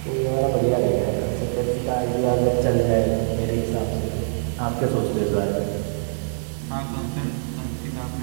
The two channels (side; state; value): left; silent; digital silence